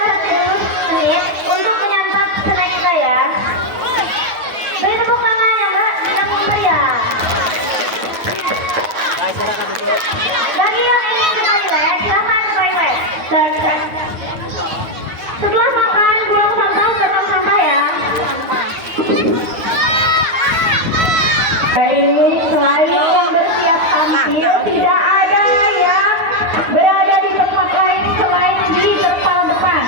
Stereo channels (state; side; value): late; left; 9.3 ms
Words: dulu menit untuk menyantap snack kita ya. Beri tepuk tangannya Mbak yang meriah. Bagi yang ingin ke toilet, silahkan ke toilet. Setelah makan, buang sampah ke tong sampah ya. Baik, selain yang bersiap tampil, tidak ada yang berada di tempat lain selain di terpal depan.